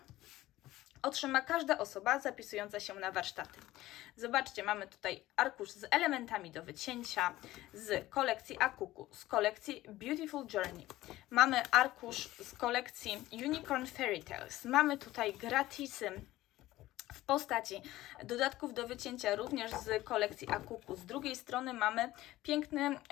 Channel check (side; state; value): right; quieter; 16.3 dB